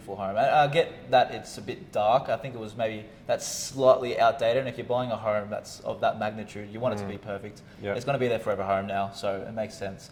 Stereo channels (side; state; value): both; identical; correlation 1.00